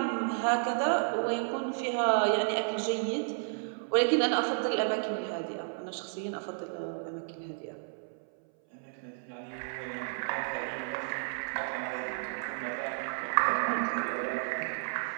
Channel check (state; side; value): silent; left; 56 dB below the other